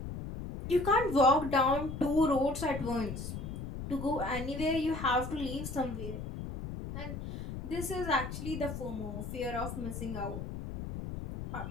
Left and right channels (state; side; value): noise; left; rumble, 7 dB below the sound